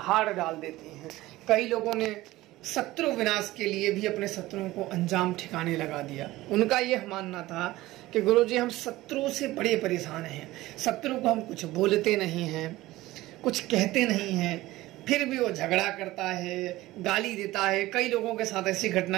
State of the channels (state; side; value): quieter; left; 17.6 dB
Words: डाल देती हैं। कई लोगों ने शत्रु विनाश के लिए भी अपने शत्रुओं को अंजाम ठिकाने लगा दिया। उनका यह मानना था कि गुरुजी, हम शत्रु से बड़े परेशान हैं, शत्रु को हम कुछ बोलते नहीं हैं, कुछ कहते नहीं हैं, फिर भी वो झगड़ा करता है, गाली देता है। कई लोगों के साथ ऐसी